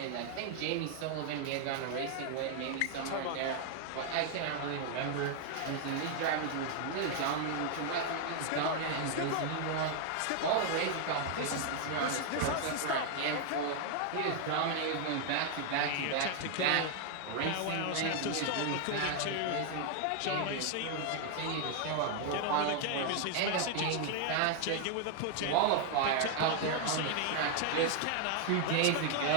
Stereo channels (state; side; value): different; both; correlation 0.00